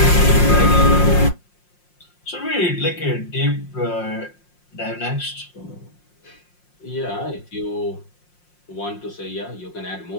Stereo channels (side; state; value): right; late; 5.6 ms